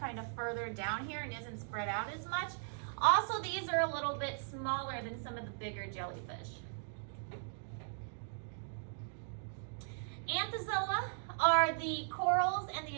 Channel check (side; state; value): left; silent; digital silence